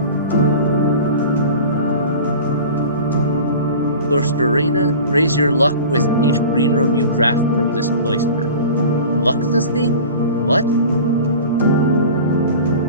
Cloisterina, raise your luck with each green room you draft from this cloister. Luck's this thing? What?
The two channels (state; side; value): inverted; both; correlation -0.38